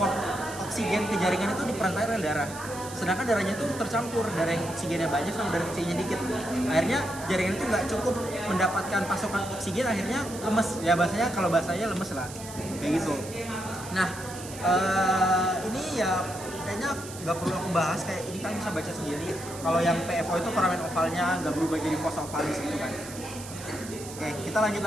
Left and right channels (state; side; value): noise; right; hiss, 13 dB below the sound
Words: oksigen ke jaringan itu diperantai oleh darah. Sedangkan darahnya itu tercampur, darah yang oksigennya banyak sama darah oksigennya dikit. Akhirnya jaringan itu nggak cukup mendapatkan pasokan oksigen, akhirnya lemes. Ya kalau bahasanya lemes lah, kayak gitu. Nah ini ya kayaknya nggak perlu aku bahas, kayak ini kan bisa baca sendiri. Kalau yang PFO itu foramen ovalnya nggak berubah jadi fossa ovalis gitu kan. Oke, kita lanjut